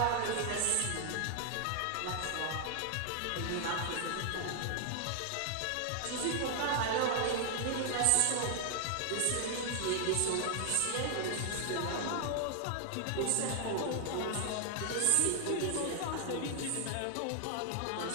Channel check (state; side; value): different; both; correlation 0.00